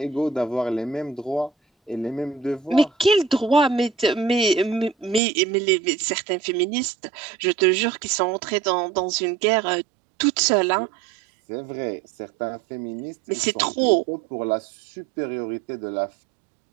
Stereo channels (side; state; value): left; drops out; at 5.2 s